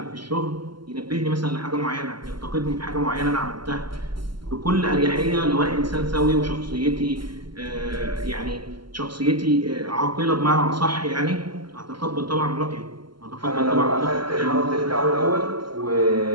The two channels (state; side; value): late; left; 0.72 ms